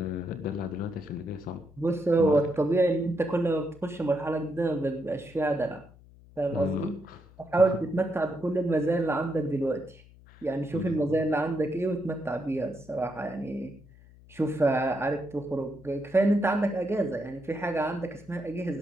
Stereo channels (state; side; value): noise; left; hum, 23 dB below the sound